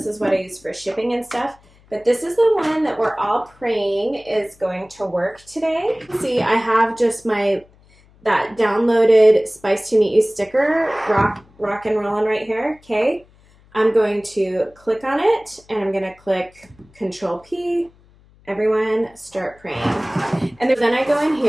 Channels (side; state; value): left; noise; hum, 29 dB below the sound